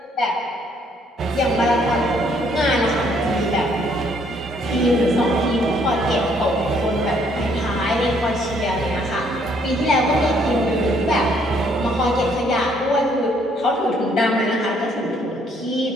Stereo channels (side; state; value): both; normal; correlation 0.66